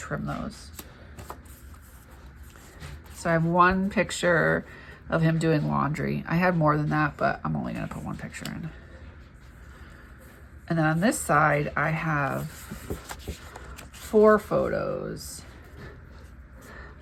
those. So I have one picture of him doing laundry. I had more than that, but I'm only gonna put one picture in. And then on this side, I have 4 photos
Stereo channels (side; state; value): both; identical; correlation 1.00